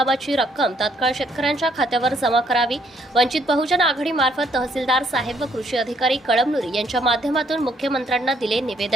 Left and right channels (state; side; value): normal; both; correlation 0.69